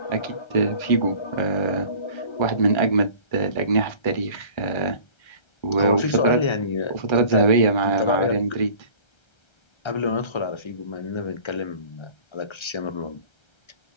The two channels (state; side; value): late; right; 1.3 ms